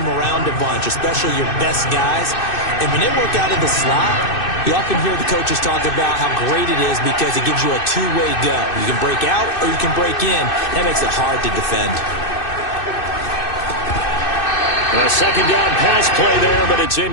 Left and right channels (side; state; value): right; late; 2.6 ms